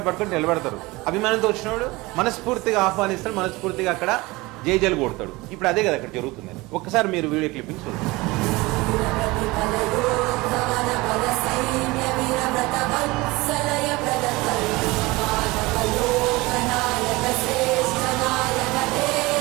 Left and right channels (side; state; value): left; quieter; 22.1 dB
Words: పట్టుకొని నిలబెడతారు. అభిమానంతో వచ్చినవాడు మనస్ఫూర్తిగా ఆహ్వానిస్తాడు, మనస్ఫూర్తిగా అక్కడ జైజలు కొడతాడు. ఇప్పుడు అదే కదా అక్కడ జరుగుతుంది. ఒక్కసారి మీరు వీడియో క్లిప్పింగ్ చూడండి.